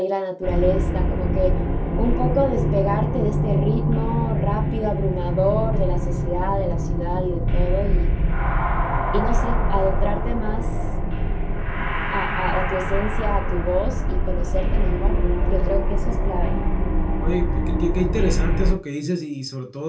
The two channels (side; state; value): both; identical; correlation 1.00